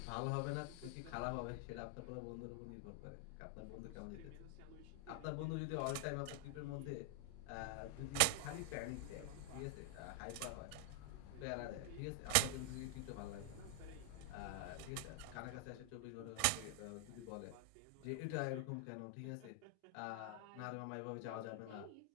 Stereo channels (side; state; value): both; different; correlation 0.00